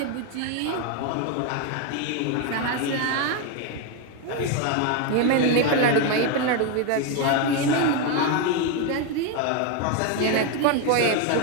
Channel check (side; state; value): both; different; correlation 0.02